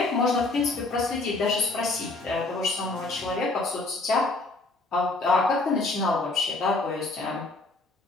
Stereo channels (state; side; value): quieter; right; 3.2 dB